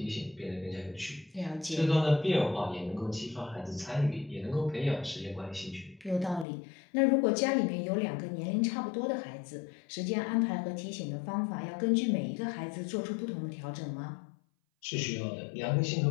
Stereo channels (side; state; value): right; drops out; at 6.5 s